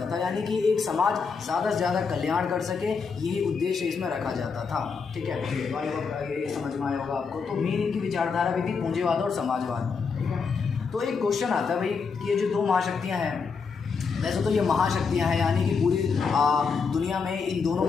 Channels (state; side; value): quieter; right; 5.3 dB